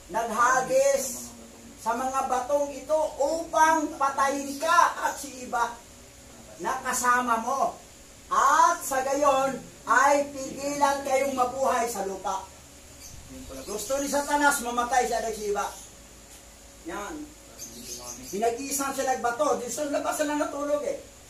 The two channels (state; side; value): identical; both; correlation 1.00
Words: naghagis sa mga batong ito upang patayin ka at si iba na kasama mo. At sa gayon ay pigilan kayong mabuhay sa lupa. Gusto ni Satanas mamatay siya at si iba. Yan. Pinag-iisang siya nagbato. Di sa labas na natulog eh.